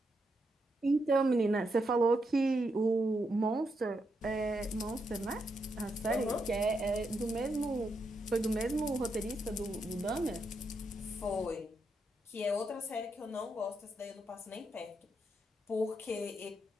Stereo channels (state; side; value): normal; both; correlation 0.81